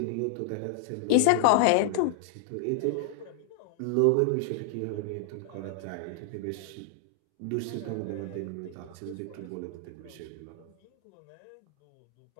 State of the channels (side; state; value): both; different; correlation 0.00